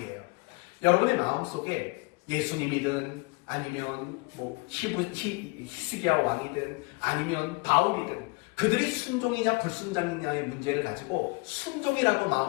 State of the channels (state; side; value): quieter; right; 27.4 dB